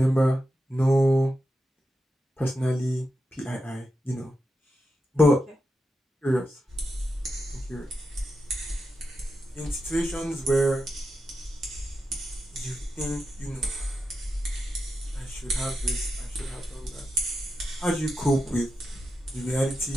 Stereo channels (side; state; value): both; normal; correlation 0.89